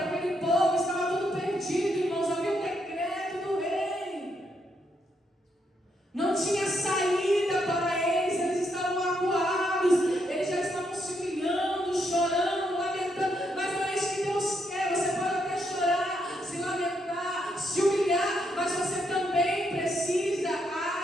aquele povo, estava tudo perdido, irmãos. Havia um decreto do rei. Não tinha saída para eles. Eles estavam acuados. Eles já estavam se humilhando, chorando, lamentando. Mas não é isso que Deus quer. Você pode até chorar, se lamentar, se humilhar, mas você também precisa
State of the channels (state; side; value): normal; both; correlation 0.77